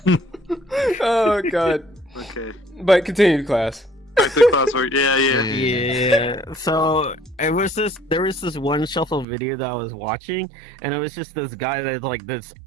Oh god. Okay. But continue, class. Back to classwork. Yeah. So there was this one shuffle video that I was watching, and it was just this guy that had like this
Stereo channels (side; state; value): left; drops out; at 9.2 s